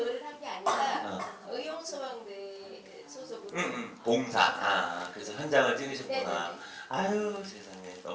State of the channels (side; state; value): both; identical; correlation 1.00